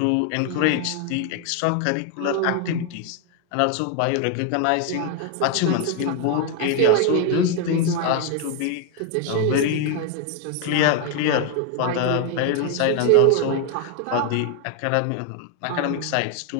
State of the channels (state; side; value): different; both; correlation 0.01